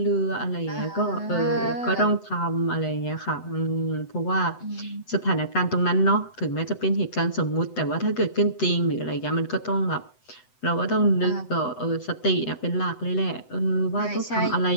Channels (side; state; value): right; late; 7.9 ms